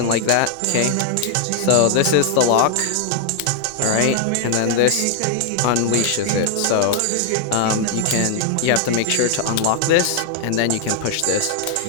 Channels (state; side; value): different; both; correlation 0.00